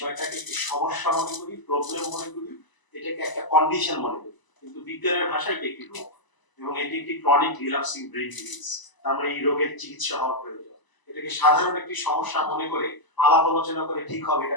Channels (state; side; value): late; right; 1.0 ms